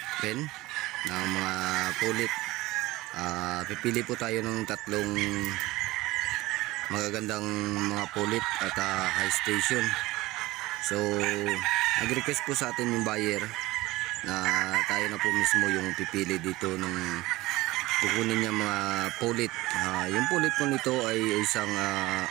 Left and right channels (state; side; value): quieter; left; 19.3 dB